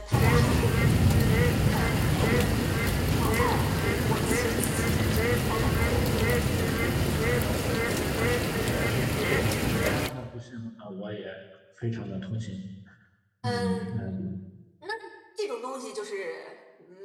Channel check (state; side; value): identical; both; correlation 1.00